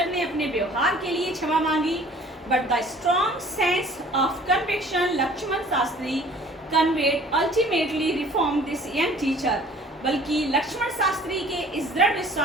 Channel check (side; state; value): both; normal; correlation 0.51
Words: ने अपने व्यवहार के लिए क्षमा मांगी, but the strong sense of conviction Lakshman Shastri conveyed ultimately reformed this young teacher, बल्कि लक्ष्मण शास्त्री के इस दृढ़